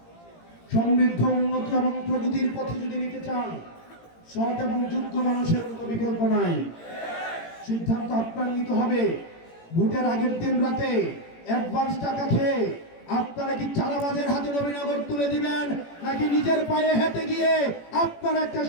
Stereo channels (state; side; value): late; right; 18 ms